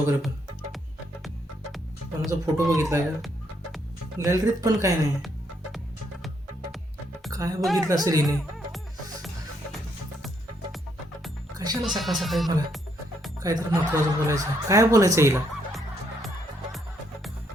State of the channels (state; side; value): normal; both; correlation 0.74